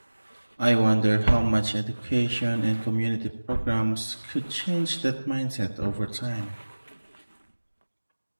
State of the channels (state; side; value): inverted; both; correlation -1.00